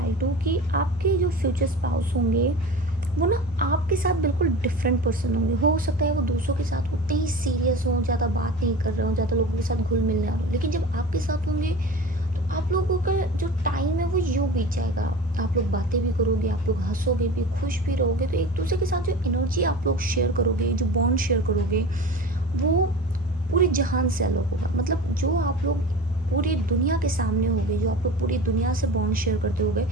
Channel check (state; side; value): normal; both; correlation 0.35